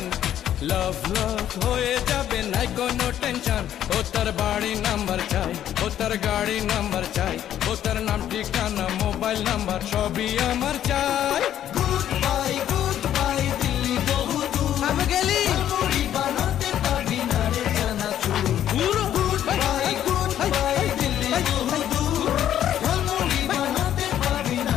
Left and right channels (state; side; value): quieter; right; 11.0 dB